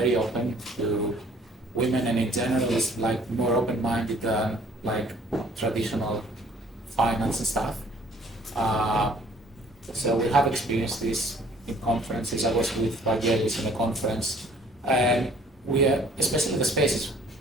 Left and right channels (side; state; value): both; normal; correlation 0.56